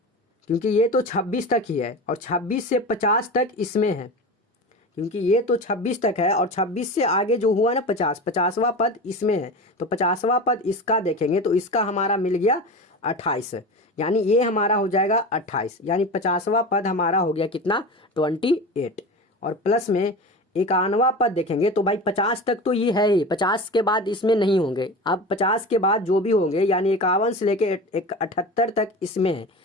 क्योंकि ये तो 26 तक ही है और 26 से 50 तक इसमें है, क्योंकि ये तो 26 तक है और 26 से आगे जो हुआ ना 50वां पद इसमें है। तो 50वां पद इसका देखेंगे तो इसका हमारा मिल गया 28, यानी ये हमारा हो जाएगा 28, यानी 50वां पद हमारा हो गया कितना 28। और प्लस में 51वां पद देखेंगे तो भाई 50 तक तो ये है ही, 50 के बाद इसमें नहीं होंगे। अब 50 के बाद जो भी होंगे यानी 51 से लेके 78 तक इसमें है,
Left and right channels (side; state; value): both; normal; correlation 0.29